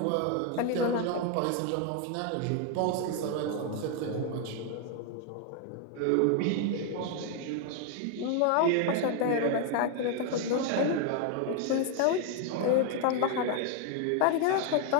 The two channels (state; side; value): different; both; correlation 0.00